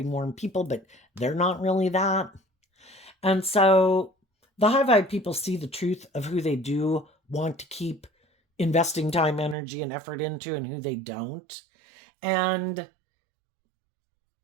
warm people, but they're not really that. And so the high vibe people see the truth of who they do want to keep investing time, energy, and effort into, and who they don't. And,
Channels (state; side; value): drops out; left; at 9.6 s